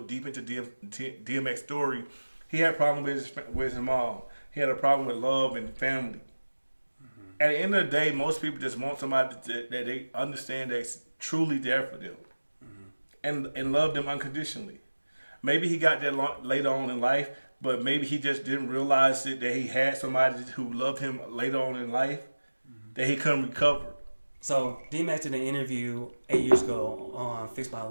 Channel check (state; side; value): inverted; both; correlation -1.00